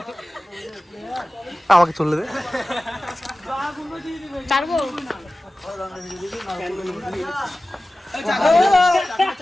আমাকে চলে দে ছাড়বো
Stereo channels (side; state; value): both; normal; correlation 0.96